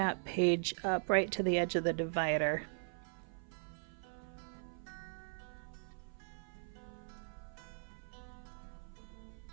page up right to the edge of the divider.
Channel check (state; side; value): silent; left; 51 dB below the other